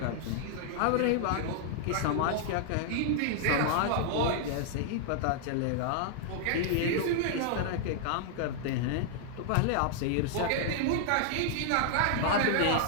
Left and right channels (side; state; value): both; different; correlation -0.01